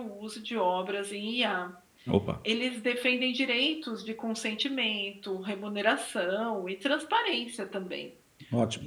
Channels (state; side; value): identical; both; correlation 1.00